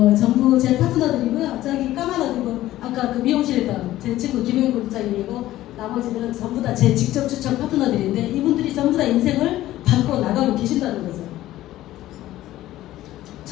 전부 제 파트너들이고요. 저기 까마귀고 아까 그 미용실에 있던 제 친구 김영인 국장님이고 나머지들은 전부 다 제 직접 추천 파트너들인데 이분들이 전부 다 인생을 바꿔 나가고 계신다는 거죠.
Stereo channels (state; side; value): quieter; right; 14.9 dB